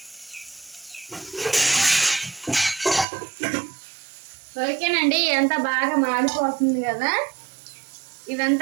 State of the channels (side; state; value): left; drops out; at 3.1 s